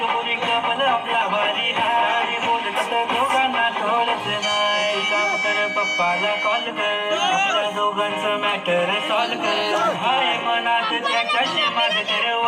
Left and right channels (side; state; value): both; identical; correlation 1.00